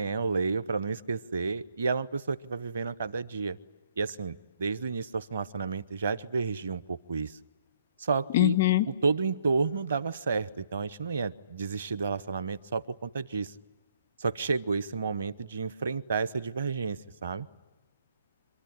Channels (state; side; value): inverted; both; correlation -0.67